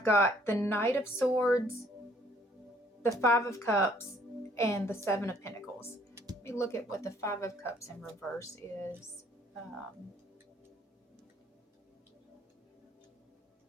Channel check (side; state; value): both; normal; correlation 0.62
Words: got the Knight of Swords, the Five of Cups, and the Seven of Pentacles. Let me look at what the Five of Cups in reverse is.